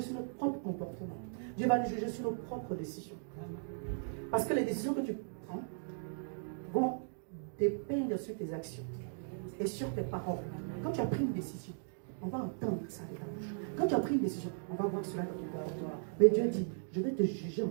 sur notre propre comportement. Dieu va nous juger sur nos propres décisions. Parce que les décisions que tu prends vont dépendre sur tes actions et sur tes paroles. Quand tu as pris une décision, on va entendre ça de ta bouche. Quand tu as pris une décision, on va voir cela dans ton comportement. Mais Dieu dit, je vais te juger en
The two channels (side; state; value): left; silent; digital silence